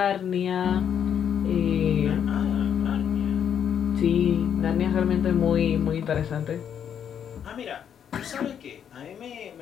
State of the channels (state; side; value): quieter; right; 8.6 dB